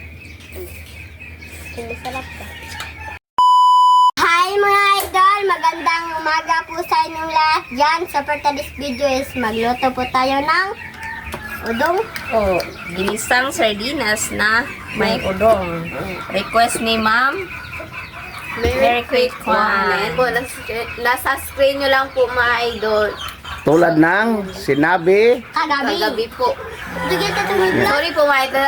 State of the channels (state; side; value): identical; both; correlation 1.00